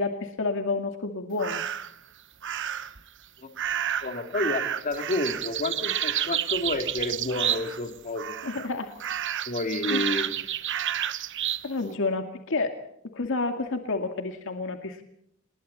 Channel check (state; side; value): normal; both; correlation 0.07